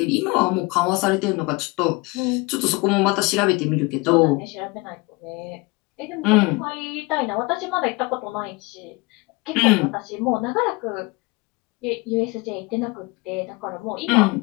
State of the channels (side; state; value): right; quieter; 25.2 dB